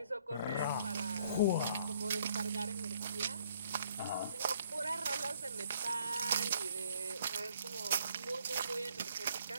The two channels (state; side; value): inverted; both; correlation -0.64